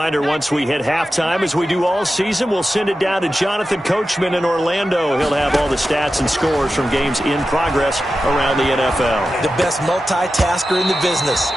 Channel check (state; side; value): normal; both; correlation 0.92